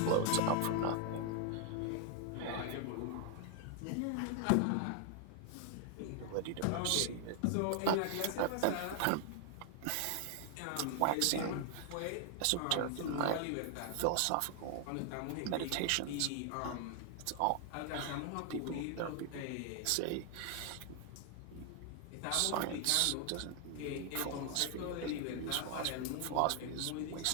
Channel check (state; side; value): different; both; correlation 0.00